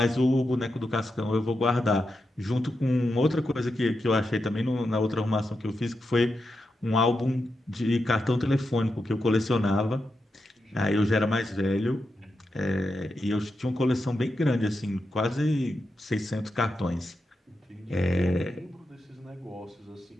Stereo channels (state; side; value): normal; both; correlation 0.87